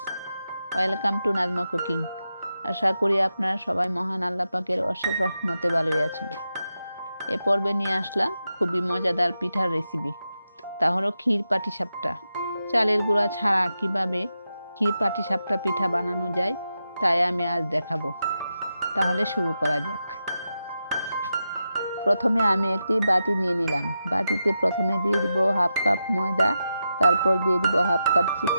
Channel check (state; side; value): inverted; both; correlation -0.88